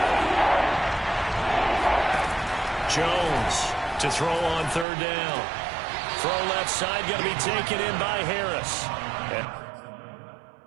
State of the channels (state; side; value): drops out; left; at 4.9 s